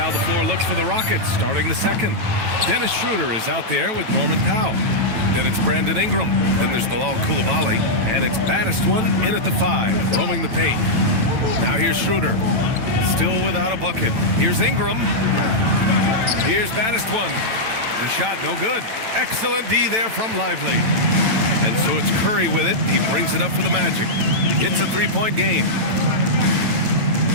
the floor looks for the Rockets starting the second. Dennis Schroeder is out there with Norman Powell. Then it's Brandon Ingram. Then there's Bilal Coulibaly. And it's baddest one in at the 5, roaming the paint. Now here's Schroeder. Still without a bucket. Here's Ingram. Here's baddest one. The shot no good. Excellent D there from Lively. And so it's Curry with it. He brings it up for the Magic. It's a 3-point game.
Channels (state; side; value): late; left; 9.1 ms